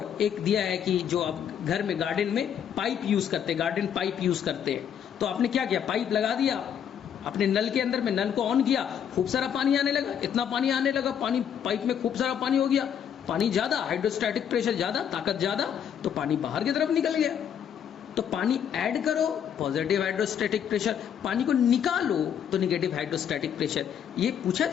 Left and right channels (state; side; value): quieter; right; 8.7 dB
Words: एक दिया है कि जो आप घर में गार्डन में पाइप यूज करते हैं, गार्डन पाइप यूज करते हैं, तो आपने क्या किया, पाइप लगा दिया अपने नल के अंदर में, नल को ऑन किया, खूब सारा पानी आने लगा, इतना पानी आने लगा, पानी पाइप में खूब सारा पानी हो गया, पानी ज्यादा, हाइड्रोस्टैटिक प्रेशर ज्यादा, ताकत ज्यादा, तो पानी बाहर की तरफ निकल गया। तो पानी ऐड करो पॉजिटिव हाइड्रोस्टैटिक प्रेशर, पानी को निकालो तो नेगेटिव हाइड्रोस्टैटिक प्रेशर। ये पूछा